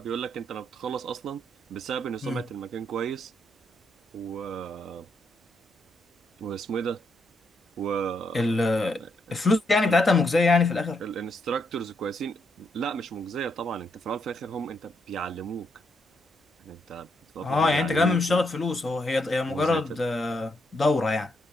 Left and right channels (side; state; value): both; normal; correlation 0.78